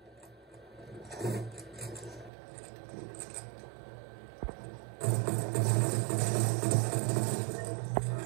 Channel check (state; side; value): drops out; left; at 2.3 s